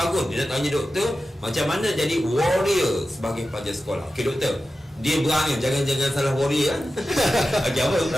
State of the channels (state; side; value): normal; both; correlation 0.93